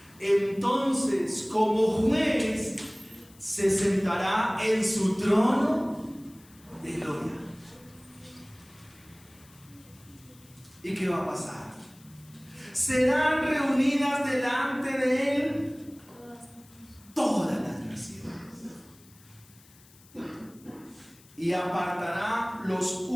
entonces como juez se sentará en su trono de gloria. ¿Y qué va a pasar? Serán reunidas delante de él todas las naciones, y apartará los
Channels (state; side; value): noise; left; hiss, 26 dB below the sound